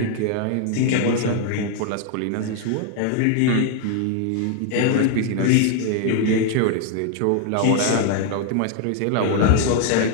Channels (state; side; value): different; both; correlation 0.00